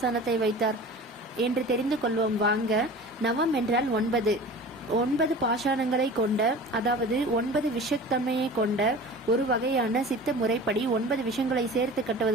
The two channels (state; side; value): normal; both; correlation 0.38